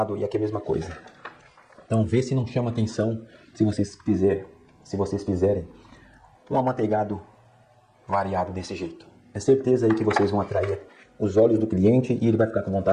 e aqui a mesma coisa. Então vê se não chama atenção se vocês fizerem um amanteigado variado desse jeito. É certeza aí que vocês vão atrair os olhos do cliente e ele vai ficar com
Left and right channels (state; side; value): identical; both; correlation 1.00